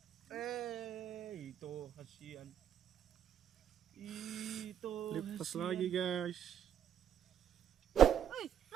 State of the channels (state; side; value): quieter; left; 9.5 dB